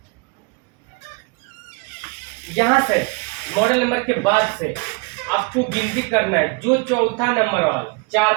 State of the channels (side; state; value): left; quieter; 28.5 dB